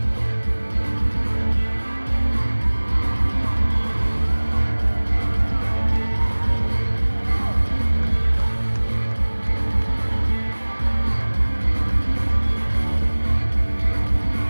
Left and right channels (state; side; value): inverted; both; correlation -1.00